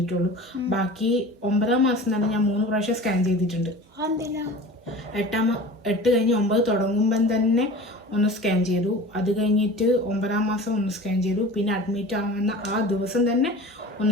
ബാക്കി 9ാം മാസം തന്നെ ഞാൻ 3 പ്രാവശ്യം സ്കാൻ ചെയ്തിട്ടുണ്ട്. 8 കഴിഞ്ഞ് 9 തുടങ്ങുമ്പം തന്നെ ഒന്ന് സ്കാൻ ചെയ്തു. അത് കഴിഞ്ഞിട്ട് 9ാം മാസം ഒന്ന് സ്കാൻ ചെയ്തു. പിന്നെ അഡ്മിറ്റ് ആവുന്ന ആ ദിവസം തന്നെ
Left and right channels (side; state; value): both; normal; correlation 0.38